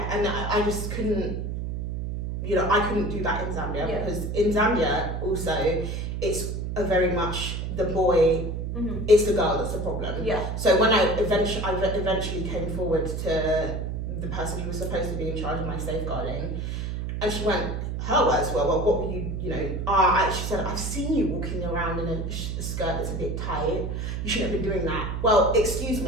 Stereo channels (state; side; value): noise; right; hum, 3 dB below the sound